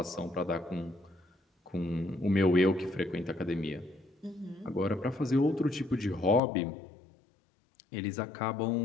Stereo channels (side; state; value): right; drops out; at 6.4 s